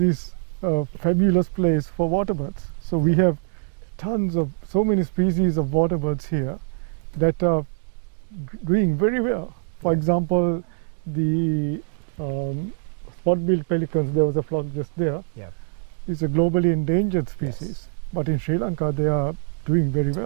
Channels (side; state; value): left; silent; 63 dB below the other